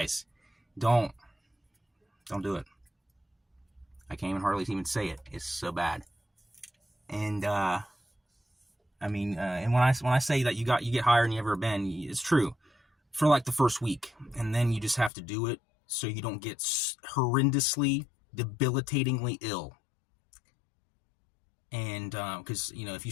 don't do it. I can't even hardly even say it. It's so bad. And I mean, and when I say that you get higher than you ever been, it's true for like the first week, and then you just have to do it so you don't get horrendously, debilitatingly ill. And because if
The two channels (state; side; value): drops out; right; at 15.1 s